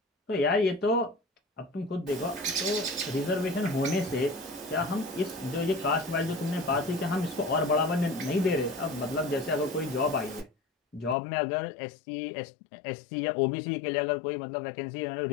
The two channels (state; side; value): drops out; right; at 11.2 s